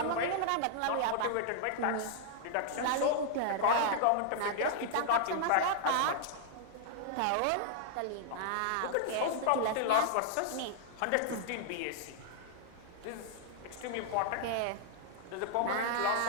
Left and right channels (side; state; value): both; different; correlation -0.01